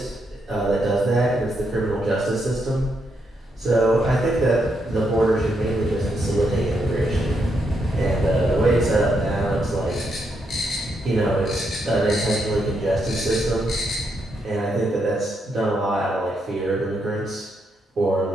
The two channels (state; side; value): normal; both; correlation 0.79